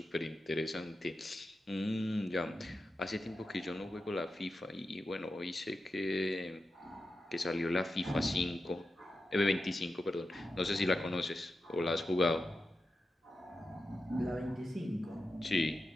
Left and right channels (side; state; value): both; normal; correlation 0.91